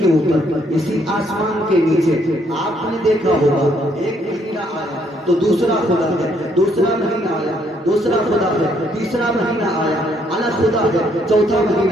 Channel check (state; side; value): normal; both; correlation 0.70